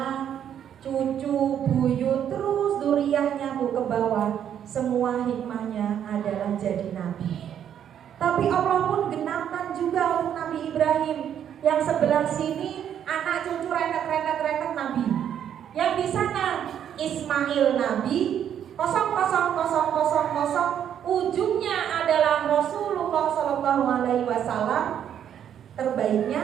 cucu, buyut, terus duriahnya Bu ke bawah. Semua hikmahnya adalah jadi nabi. Tapi Allah pun genapkan juga untuk Nabi Ibrahim. Yang sebelah sini anak cucu rentet nabi. Yang di sana Ismail nabi, 00000, ujungnya adalah Rasulullah SAW, terbaiknya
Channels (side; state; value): left; quieter; 9.4 dB